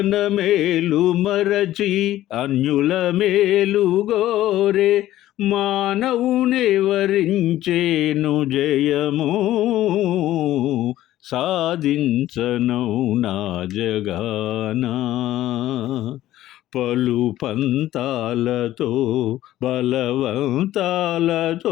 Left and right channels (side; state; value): right; quieter; 14.2 dB